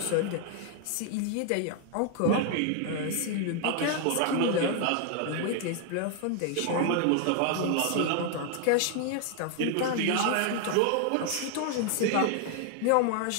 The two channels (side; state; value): both; different; correlation 0.00